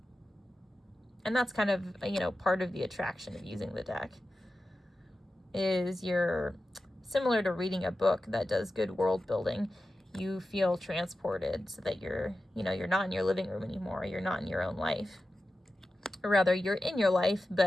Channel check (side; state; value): both; normal; correlation 0.93